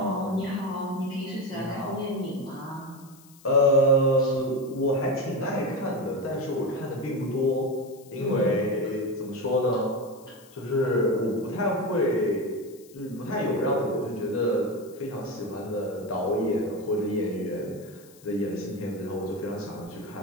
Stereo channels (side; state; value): left; noise; hiss, 25 dB below the sound